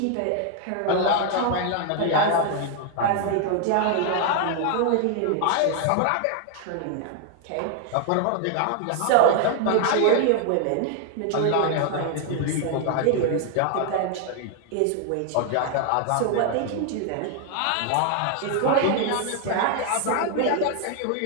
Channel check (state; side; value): different; both; correlation 0.00